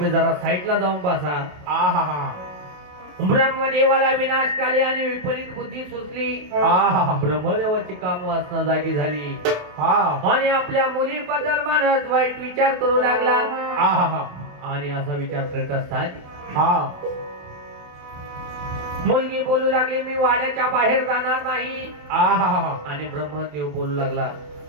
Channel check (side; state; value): left; late; 27 ms